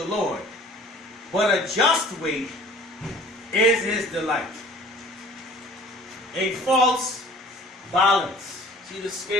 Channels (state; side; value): normal; both; correlation 0.49